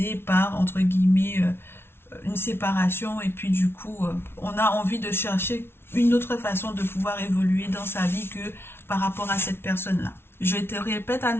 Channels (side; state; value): right; late; 0.12 ms